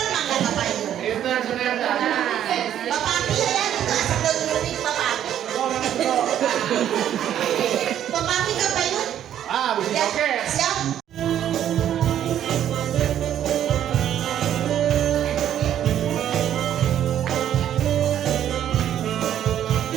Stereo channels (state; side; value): quieter; left; 10.6 dB